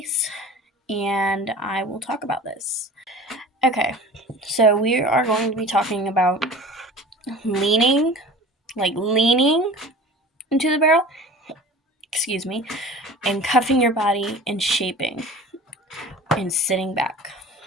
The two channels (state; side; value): normal; both; correlation 0.40